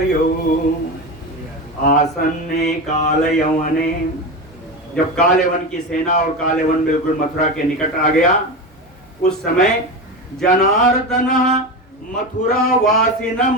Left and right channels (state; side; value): normal; both; correlation 0.21